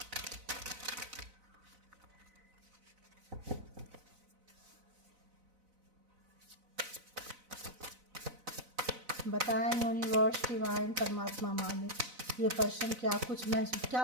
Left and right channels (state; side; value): late; left; 4.0 ms